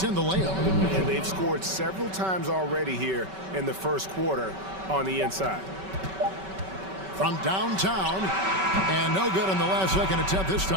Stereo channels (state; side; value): late; left; 5.2 ms